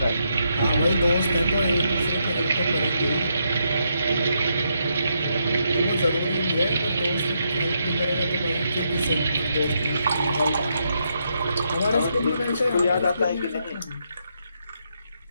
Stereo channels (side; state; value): both; inverted; correlation -0.79